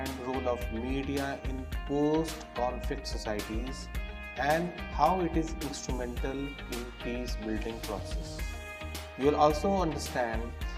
role of media in post-conflict societies and how it is instrumental in peace building process. You will also understand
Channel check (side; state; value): both; identical; correlation 1.00